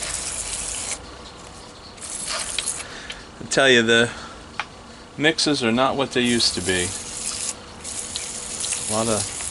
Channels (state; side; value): identical; both; correlation 1.00